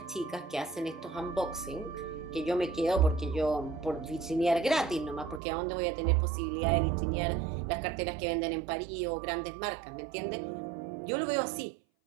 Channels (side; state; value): left; drops out; at 5.4 s